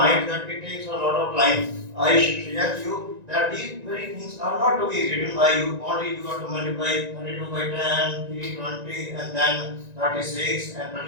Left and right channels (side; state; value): left; late; 1.9 ms